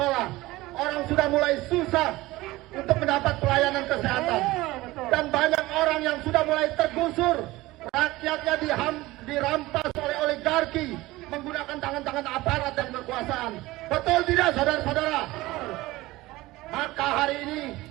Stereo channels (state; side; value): quieter; left; 19.0 dB